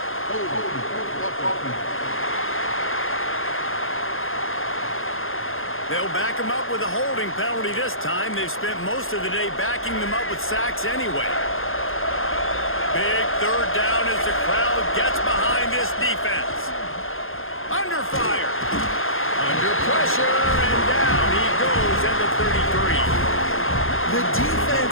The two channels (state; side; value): late; right; 0.60 ms